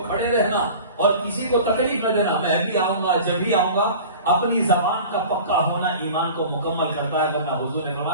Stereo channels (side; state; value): both; inverted; correlation -0.40